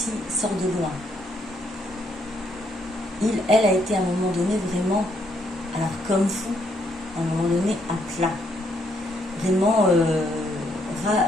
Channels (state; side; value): normal; both; correlation 0.73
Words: loin. Elle a été à un moment donné vraiment, alors comme vous, à un moment donné à plat. Vraiment